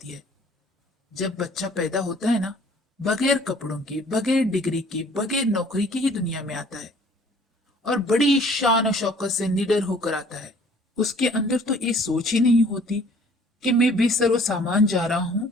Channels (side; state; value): both; normal; correlation 0.55